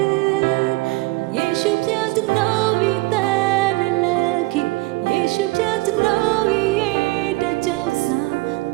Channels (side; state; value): left; quieter; 22.0 dB